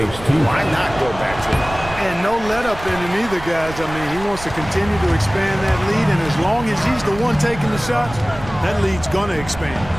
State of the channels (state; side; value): noise; right; rumble, 14 dB below the sound